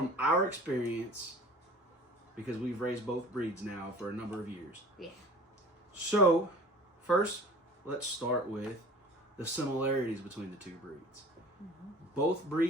our experience, because we've raised both breeds now for a number of years. Yeah. So, first, let's start with the similarities between the two breeds. Mm-hmm. Both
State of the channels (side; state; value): both; normal; correlation 0.43